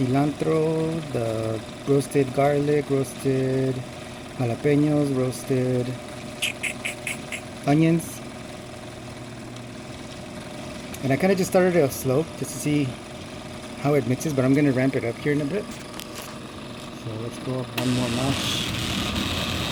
the roasted garlic, roasted jalapenos, roasted onions. And I kind of just started it off slow just to see how it mixes, but I'm going to ramp it up here in a bit. So let's go up one more notch.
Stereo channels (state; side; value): identical; both; correlation 1.00